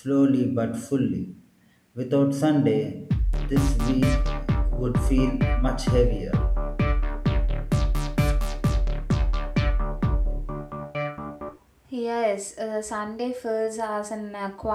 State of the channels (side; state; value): both; identical; correlation 1.00